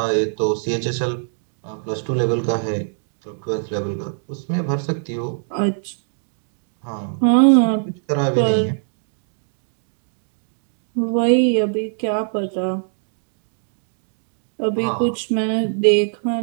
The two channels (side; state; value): left; silent; digital silence